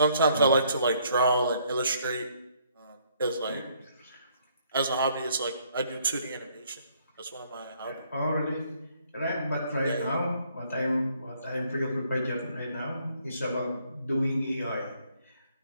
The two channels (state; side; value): inverted; both; correlation -0.67